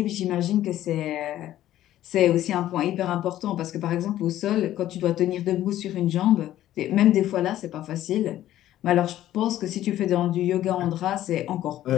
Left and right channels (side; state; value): right; quieter; 13.2 dB